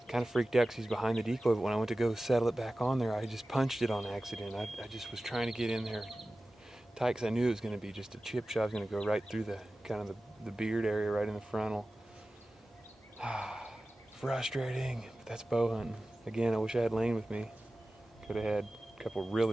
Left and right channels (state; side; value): normal; both; correlation 0.96